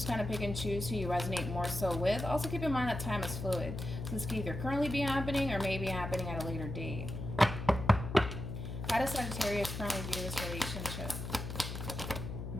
kind of pick and choose who you resonate more so with. Also keep in mind that time is fluid. So this could either currently be happening or may be happening at a later date. How does Sagittarius currently view this relationship?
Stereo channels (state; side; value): noise; left; hum, 6 dB below the sound